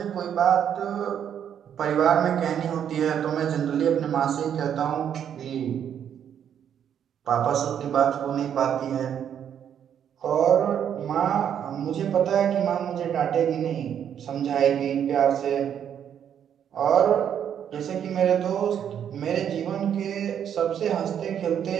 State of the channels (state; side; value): quieter; left; 9.0 dB